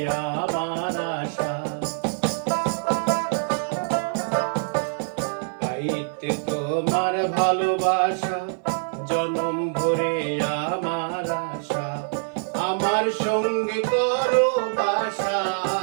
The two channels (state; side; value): silent; left; 58 dB below the other